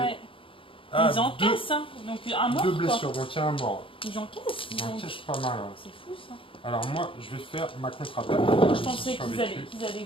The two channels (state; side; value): late; right; 0.25 ms